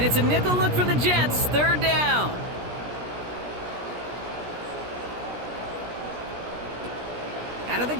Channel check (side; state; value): left; late; 17 ms